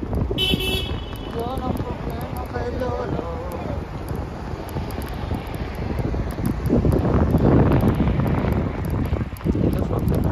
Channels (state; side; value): identical; both; correlation 1.00